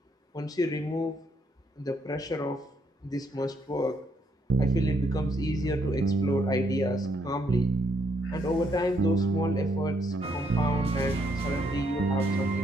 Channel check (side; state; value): both; normal; correlation 0.72